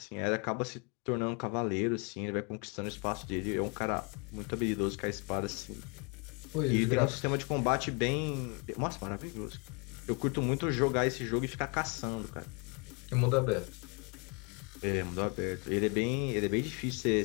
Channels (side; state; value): right; quieter; 32.5 dB